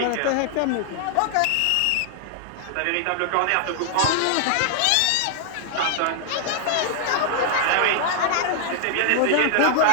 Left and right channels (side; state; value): both; different; correlation 0.00